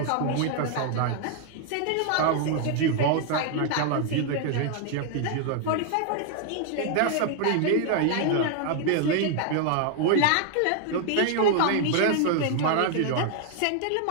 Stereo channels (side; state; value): both; different; correlation 0.00